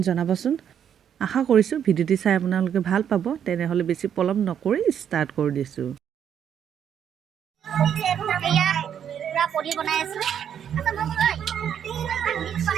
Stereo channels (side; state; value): left; quieter; 8.8 dB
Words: জনাবচোন। আশা কৰিছোঁ ভিডিঅ'টি চাই আপোনালোকে ভাল পাব। তেনেহ'লে বেছি পলম নকৰি ষ্টাৰ্ট কৰি দিছোঁ। পনীৰ বনাই আছো